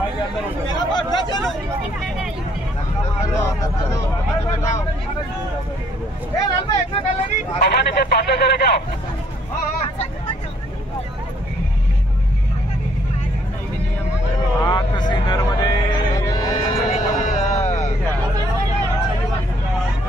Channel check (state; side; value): normal; both; correlation 0.66